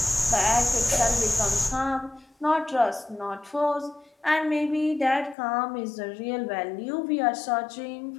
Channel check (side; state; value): right; drops out; at 5.4 s